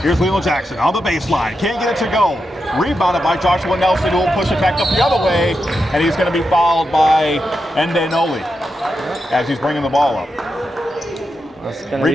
Here's Leland Jackson on the baseline. Can't get it to go. Rebounded by Joshua Nelson, who will push it back up the other way, and he's going to be fouled by Ende Noli as he's bringing the ball up.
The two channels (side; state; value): both; normal; correlation 0.87